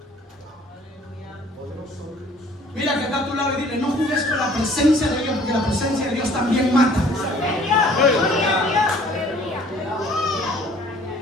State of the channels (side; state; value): both; normal; correlation 0.54